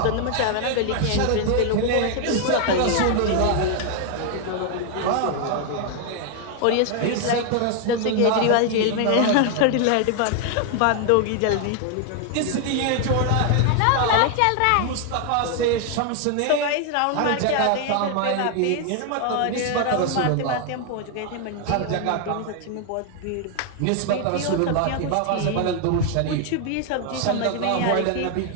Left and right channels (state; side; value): different; both; correlation 0.00